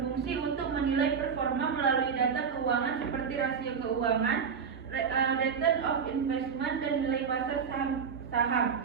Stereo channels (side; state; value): left; quieter; 6.4 dB